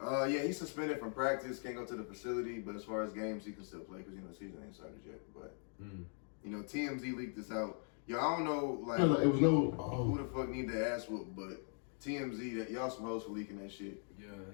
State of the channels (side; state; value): right; silent; 51 dB below the other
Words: he's suspended from practice, can't go to the facility, but as far as games, he can still play because, the season ain't started yet. But, TMZ leaked this out. Yo, I don't know, like, It was no. who the fuck need the ass whoop, but TMZ, that y'all some hoes for leaking that shit. Yeah,